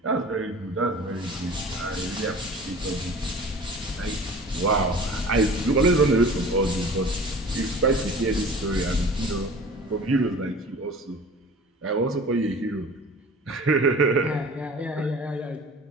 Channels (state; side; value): normal; both; correlation 0.42